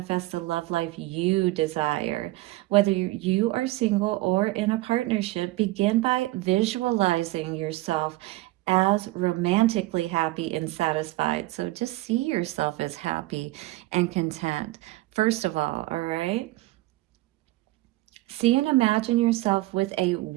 the love life you desire. Whether you are single or in a partnership, begin by visualizing yourself as romantically happy and satisfied. So just see yourself as happy and content, first of all right? See and imagine yourself with a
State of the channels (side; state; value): left; quieter; 18.9 dB